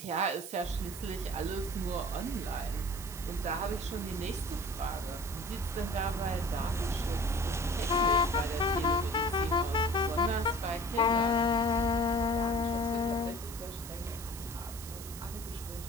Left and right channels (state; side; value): noise; right; hiss, 12 dB below the sound